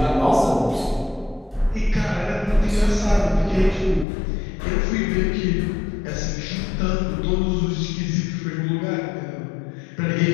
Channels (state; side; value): drops out; right; at 4.0 s